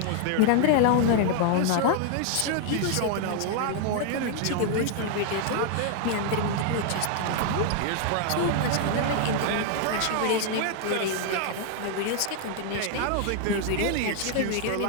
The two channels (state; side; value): different; both; correlation 0.00